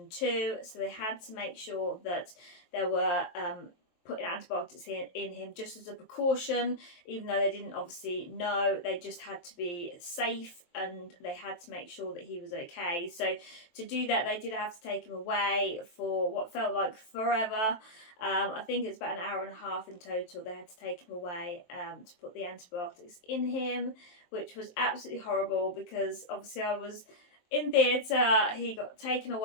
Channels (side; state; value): right; late; 23 ms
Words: too, so they had to make sure that there were putting antibiotics in him just as a precaution, even though they didn't obviously know. They just had to be safe and they had to make sure that he was okay. So to do that, they did have to take him away for what felt like forever. I think it's about an hour and a half in total. They had to take him away to put the antibiotics in him, which was absolutely horrible because obviously I was in theatre, he got taken